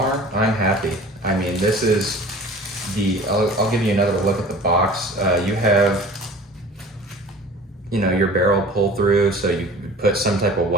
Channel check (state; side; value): normal; both; correlation 0.43